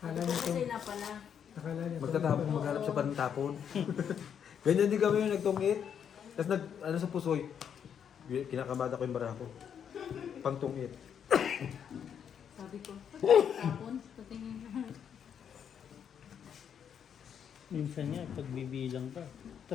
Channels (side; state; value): right; quieter; 8.2 dB